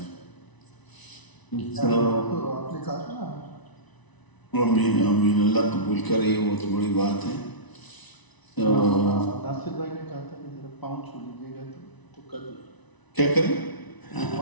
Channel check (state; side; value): late; right; 1.0 ms